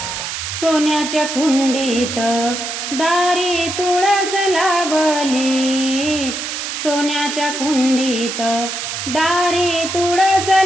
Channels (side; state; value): right; noise; hiss, 5 dB below the sound